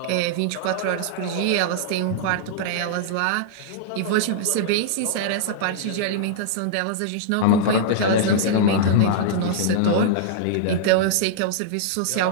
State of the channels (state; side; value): different; both; correlation -0.02